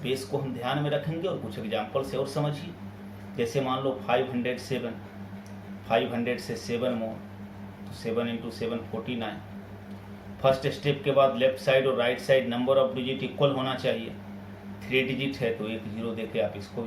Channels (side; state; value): both; identical; correlation 1.00